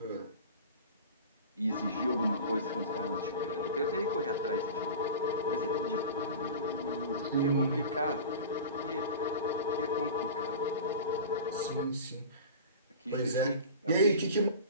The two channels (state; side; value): inverted; both; correlation -0.34